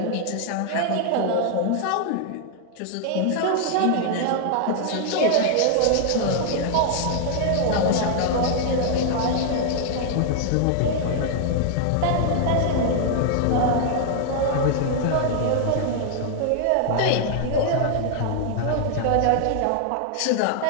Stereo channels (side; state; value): both; different; correlation 0.00